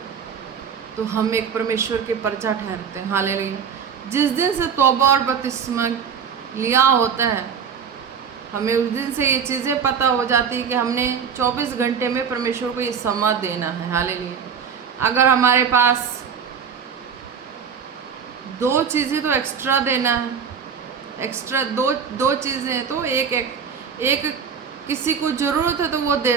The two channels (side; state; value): left; quieter; 6.9 dB